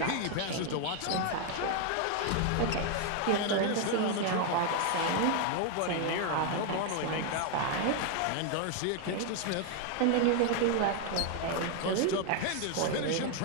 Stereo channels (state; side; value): different; both; correlation 0.01